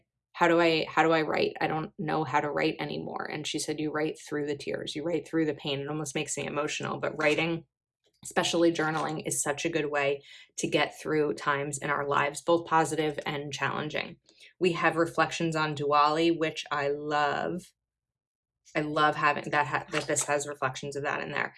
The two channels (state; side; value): identical; both; correlation 1.00